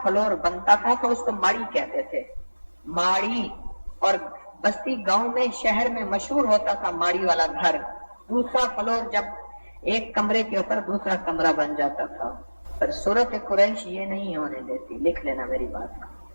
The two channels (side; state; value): both; inverted; correlation -1.00